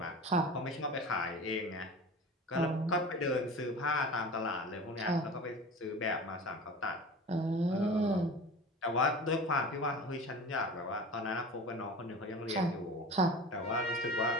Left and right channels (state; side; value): normal; both; correlation 0.35